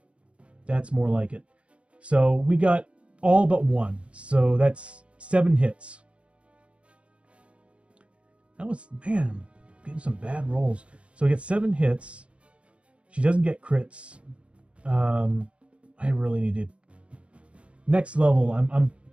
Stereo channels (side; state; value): left; late; 0.060 ms